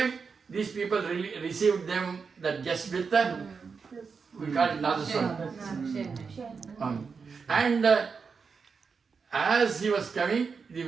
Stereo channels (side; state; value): left; quieter; 5.4 dB